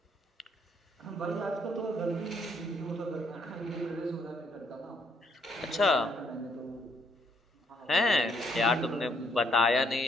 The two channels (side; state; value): both; normal; correlation 0.70